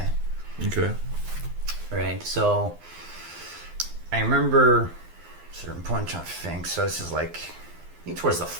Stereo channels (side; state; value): left; late; 12 ms